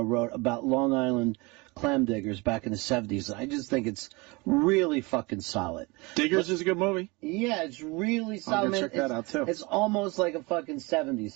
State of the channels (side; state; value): left; quieter; 25.7 dB